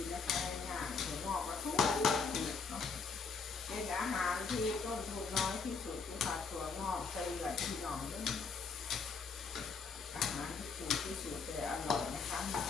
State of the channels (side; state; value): right; quieter; 5.0 dB